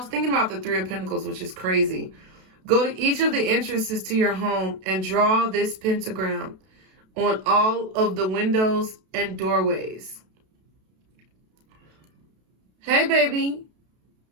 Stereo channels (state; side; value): late; left; 32 ms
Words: thinking about the 3 of Pentacles, which is crazy. Go to each of the entrances to your home and draw this pentagram on all of the windows and doorways. Hey, baby.